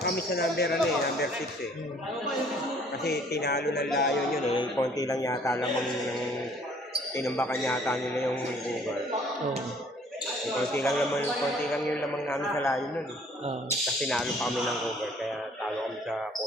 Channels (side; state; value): both; normal; correlation 0.58